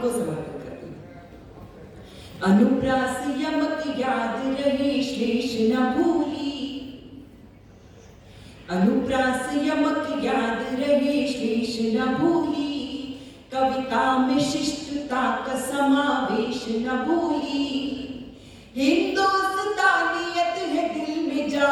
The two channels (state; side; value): identical; both; correlation 1.00